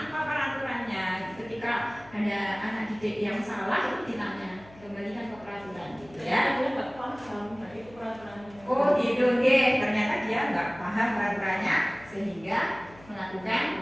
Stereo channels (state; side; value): noise; left; hum, 23 dB below the sound